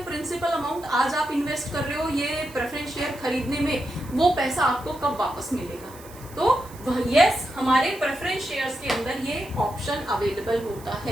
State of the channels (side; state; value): right; noise; hiss, 20 dB below the sound